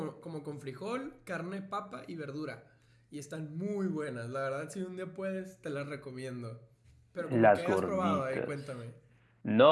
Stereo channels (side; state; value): both; identical; correlation 1.00